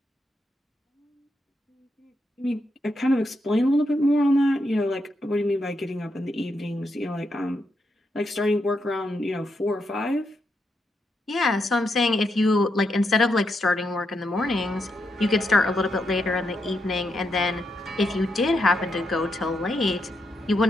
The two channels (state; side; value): normal; both; correlation 0.82